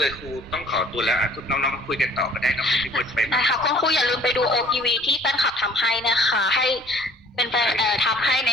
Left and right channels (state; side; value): normal; both; correlation 0.54